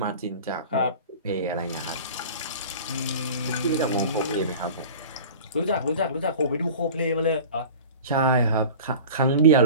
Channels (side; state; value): both; inverted; correlation -0.38